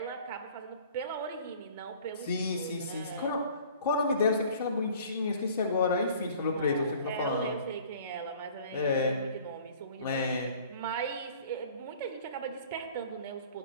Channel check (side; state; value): both; inverted; correlation -0.50